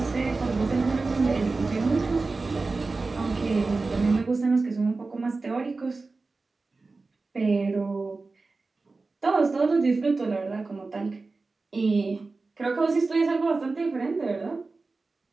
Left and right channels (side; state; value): left; quieter; 3.7 dB